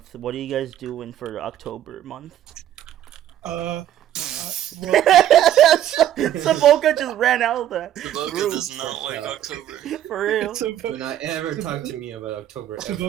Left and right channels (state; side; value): quieter; left; 11.7 dB